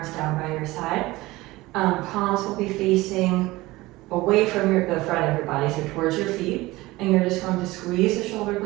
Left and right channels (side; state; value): left; quieter; 19.7 dB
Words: down by your side. Palms will be facing away from the front of your body, so towards your feet. And you're just going to squeeze the shoulder